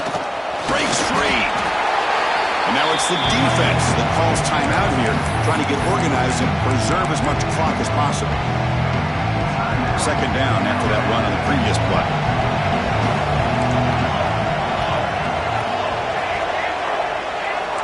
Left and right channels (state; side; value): identical; both; correlation 1.00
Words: Breaks free. And now it's the defense that calls timeout here, trying to get organized and preserve as much clock as possible. Second down after that run on the previous play.